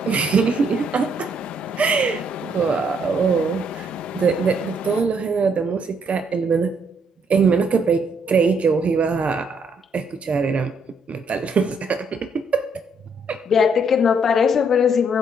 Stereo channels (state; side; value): normal; both; correlation 0.71